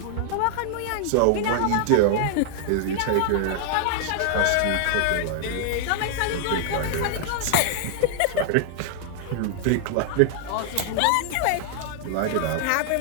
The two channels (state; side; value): different; both; correlation 0.00